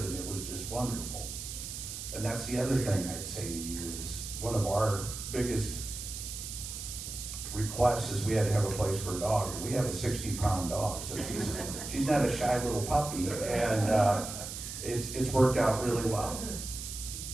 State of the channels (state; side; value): noise; right; hiss, 8 dB below the sound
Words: and it was just wonderful. And that's the other thing I'd say to you is one of our biggest requests is we had to have a place for a dog. We have a 60-pound dog, so she's not a shy little puppy, and it's worked out really well.